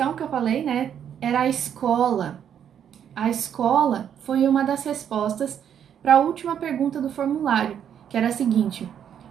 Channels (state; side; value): quieter; left; 8.9 dB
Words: que eu falei, né, era a escola. A escola foi uma das respostas para a última pergunta do formulário, que era a seguinte: